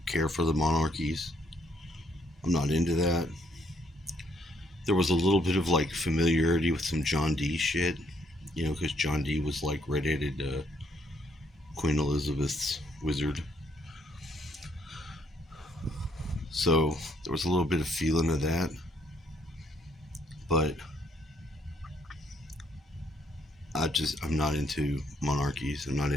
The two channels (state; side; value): normal; both; correlation 0.70